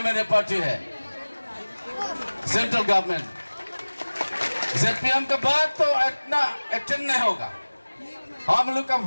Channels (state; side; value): inverted; both; correlation -1.00